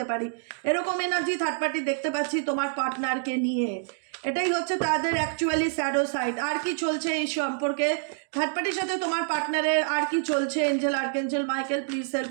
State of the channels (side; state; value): left; silent; digital silence